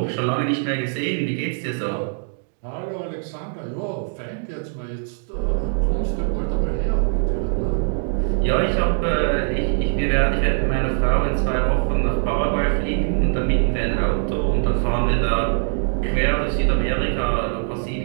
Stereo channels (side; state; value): left; silent; 61 dB below the other